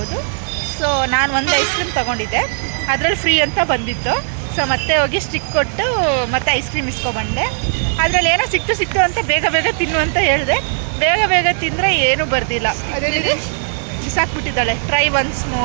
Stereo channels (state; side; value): silent; left; digital silence